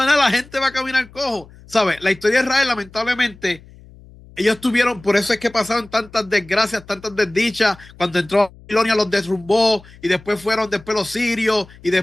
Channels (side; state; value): left; noise; hum, 23 dB below the sound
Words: nada, la gente va a caminar cojo. ¿Sabes? La historia de Israel, lamentablemente, ellos tuvieron, por eso es que pasaron tantas desgracias, tantas desdichas. Cuando entró Babilonia los derrumbó y después fueron después los sirios y